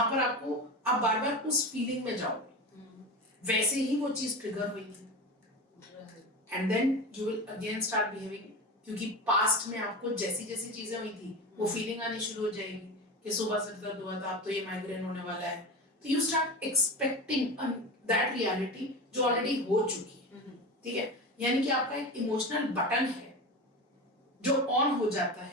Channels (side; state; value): both; normal; correlation 0.26